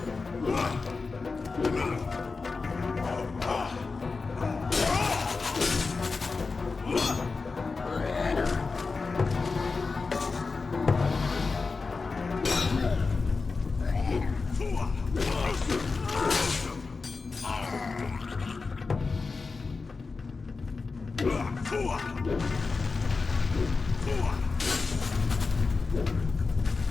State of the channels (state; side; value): quieter; right; 4.3 dB